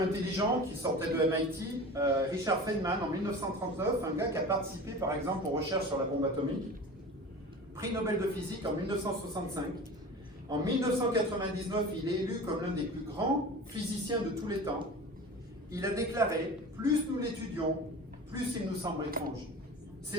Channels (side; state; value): both; normal; correlation 0.35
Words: intelligent qui sortait de MIT, Richard Feynman, en 1939, un gars qui a participé par exemple aux recherches sur la bombe atomique, prix Nobel de physique en 1965. En 1999, il est élu comme l'un des plus grands physiciens de tous les temps. Il a déclaré « Plus nous l'étudions, plus il nous semble étrange.